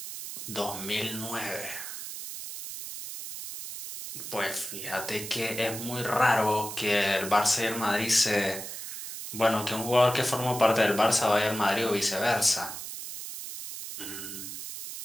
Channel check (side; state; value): right; noise; hiss, 8 dB below the sound